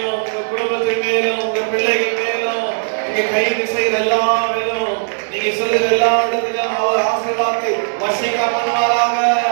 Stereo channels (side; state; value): left; silent; 68 dB below the other